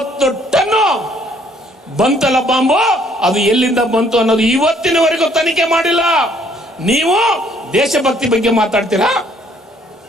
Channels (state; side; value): normal; both; correlation 0.63